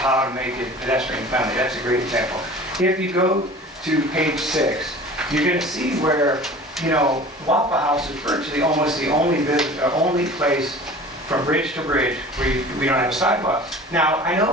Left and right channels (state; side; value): normal; both; correlation 0.41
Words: to make it pedestrian friendly. That's a great example. If you go to page 6, you're going to see where, Waffle House is virtually almost the only place from bridge to bridge where we don't have a sidewalk. Now, I